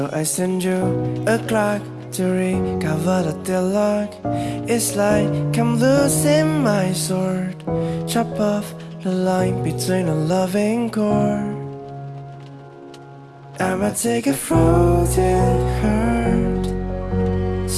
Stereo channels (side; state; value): both; identical; correlation 1.00